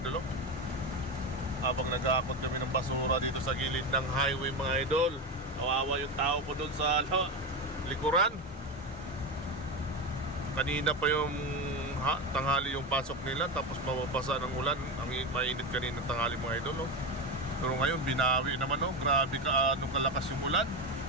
idol. Habang nag-aakot kami ng basura dito sa gilid ng highway mga idol. Kawawa yung tao ko doon sa likuran. Kanina pa yung tanghali yung pasok nila, tapos mababasa ng ulan. Ang mainit kanina tanghali mga idol. Pero ngayon binawi naman. Grabe ka, anong kalakas yung ulan.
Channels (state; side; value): normal; both; correlation 0.17